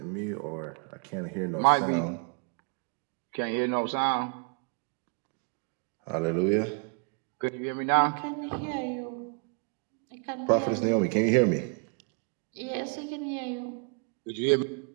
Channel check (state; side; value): quieter; left; 37.9 dB